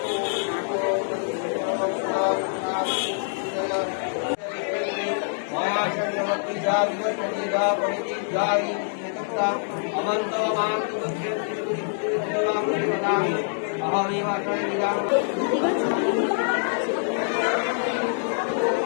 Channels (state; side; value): silent; right; digital silence